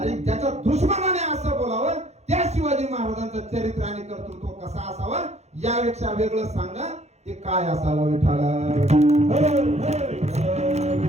ज्याच्या दुश्मनाने असं बोलावं, त्या शिवाजी महाराजांचं चरित्र आणि कर्तृत्व कसं असावं, यापेक्षा वेगळं सांगा ते काय असावं विठाला।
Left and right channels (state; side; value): late; left; 0.32 ms